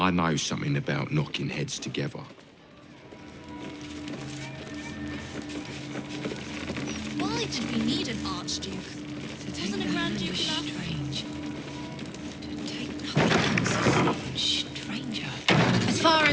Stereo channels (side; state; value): both; identical; correlation 1.00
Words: know something about knocking heads together. Why did we need an Archduke? Wasn't a Grand Duke enough? Strange. To take nothing stranger. As far